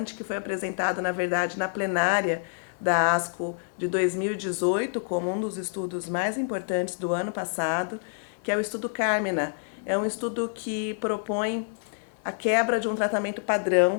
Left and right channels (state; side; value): silent; right; digital silence